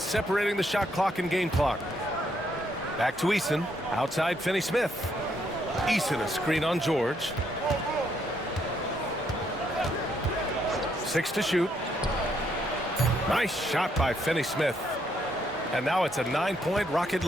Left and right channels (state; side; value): normal; both; correlation 0.73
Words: separating the shot clock and game clock. Back to Eason. Outside Finney-Smith. Eason a screen on George. 6 to shoot. Nice shot by Finney-Smith. And now it's a 9-point Rocket